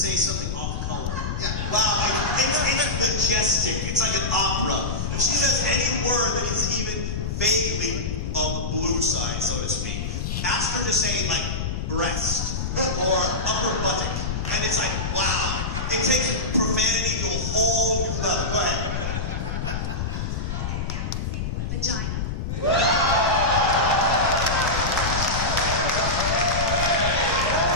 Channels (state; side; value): noise; left; rumble, 2 dB below the sound